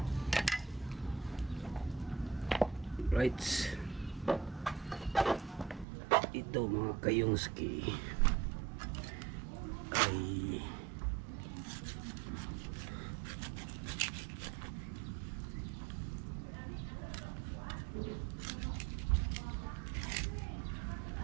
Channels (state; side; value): drops out; left; at 5.9 s